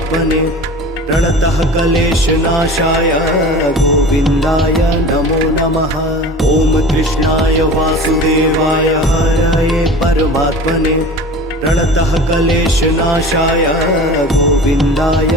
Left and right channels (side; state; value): both; normal; correlation 0.38